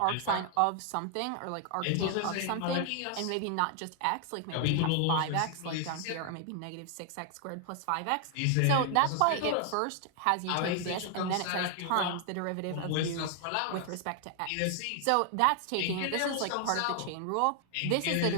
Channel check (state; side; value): different; both; correlation 0.00